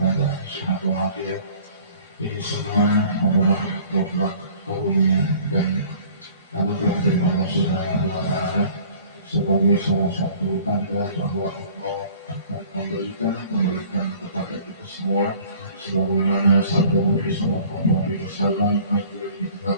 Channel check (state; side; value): inverted; both; correlation -0.50